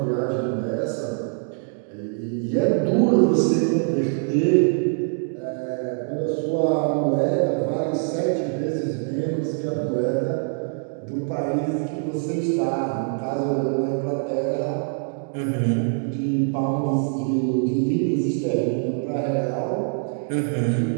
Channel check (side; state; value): left; silent; 63 dB below the other